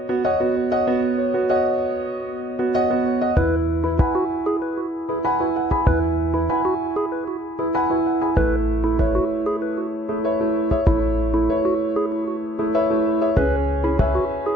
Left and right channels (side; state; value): both; normal; correlation 0.63